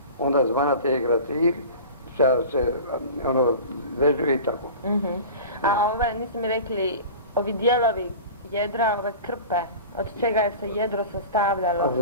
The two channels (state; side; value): inverted; both; correlation -0.36